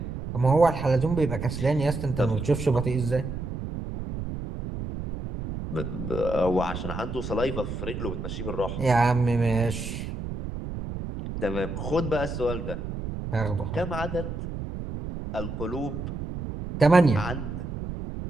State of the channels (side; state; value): right; noise; rumble, 6 dB below the sound